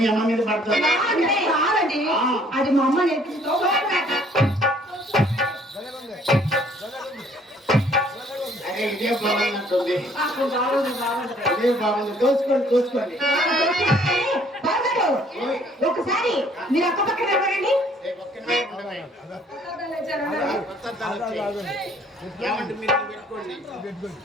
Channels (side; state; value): both; normal; correlation 0.60